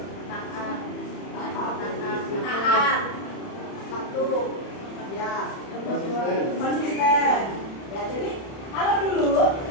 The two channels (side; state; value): right; late; 31 ms